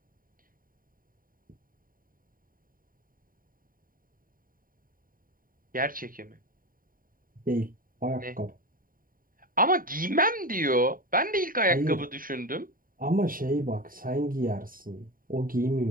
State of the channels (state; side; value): late; left; 0.41 ms